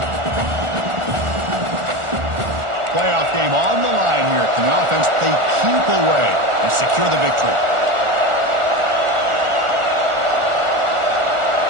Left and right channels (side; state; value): left; late; 1.4 ms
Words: Playoff game on the line here. Can the offense play keep away and secure the victory?